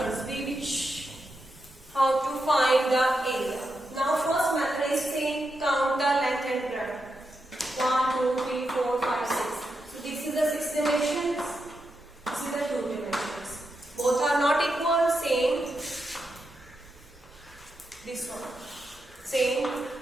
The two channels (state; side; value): normal; both; correlation 0.86